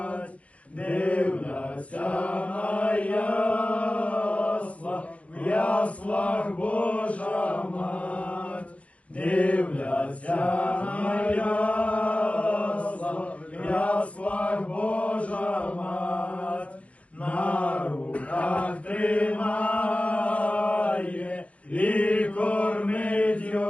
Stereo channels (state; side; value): late; right; 0.065 ms